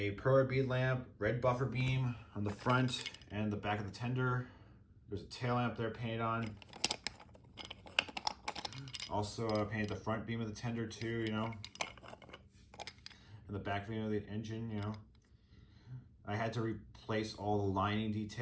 perler bead lamp, red buffer beam on the front and the back of the tender. There's a tail lamp there painted on. Also painted the front beam of the tender too, and the back beam of the engine, I had to replace all the lining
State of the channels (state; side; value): identical; both; correlation 1.00